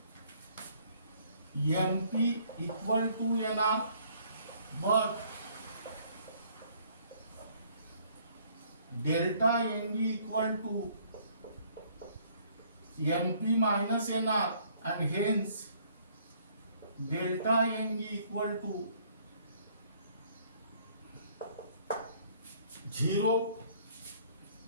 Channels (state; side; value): inverted; both; correlation -0.61